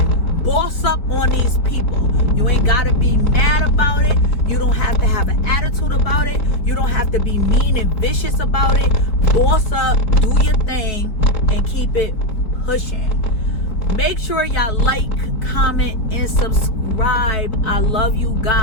Boss up on these people. You ain't got to be mad about it. You don't have to have an attitude about it. You don't have to be mean and vicious about it. Boss up, do your thing, and keep it pushing. Make sure y'all like, comment, and subscribe. I love you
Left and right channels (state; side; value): late; right; 4.5 ms